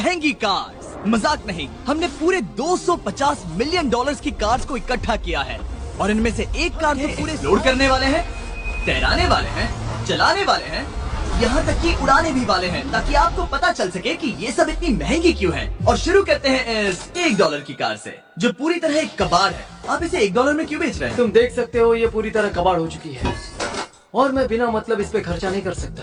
कार्स। मजाक नहीं, हमने पूरे 250 मिलियन डॉलर्स की कार्स को इकट्ठा किया है और इनमें से एक कार तो पूरे लोड करने वाले हैं, तैराने वाले हैं, चलाने वाले हैं, यहाँ तक कि उड़ाने भी वाले हैं, ताकि आपको पता चल सके कि ये सब इतनी महंगी क्यों है। और शुरू करते हैं इस $1 की कार से, जो पूरी तरह एक कबाड़ है। आप इसे $1 में क्यों बेच रहे हैं? तुम देख सकते हो ये पूरी तरह कबाड़ हो चुकी है और मैं बिना मतलब इस पे खर्चा नहीं कर सकता।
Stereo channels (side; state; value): both; identical; correlation 1.00